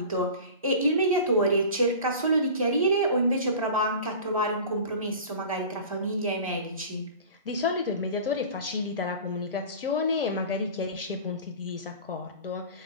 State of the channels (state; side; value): inverted; both; correlation -0.38